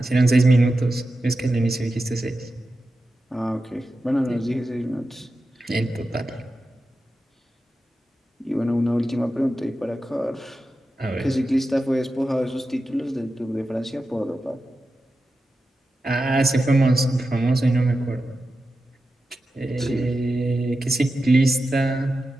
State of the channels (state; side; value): normal; both; correlation 0.91